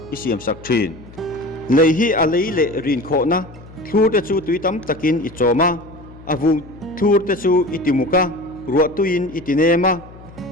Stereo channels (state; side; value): noise; left; hum, 20 dB below the sound